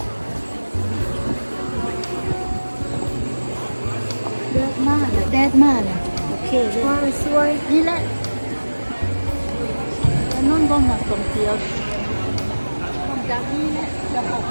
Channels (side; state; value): both; inverted; correlation -1.00